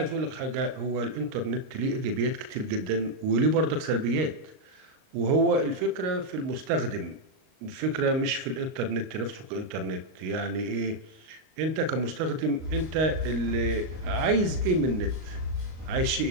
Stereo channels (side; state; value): left; late; 38 ms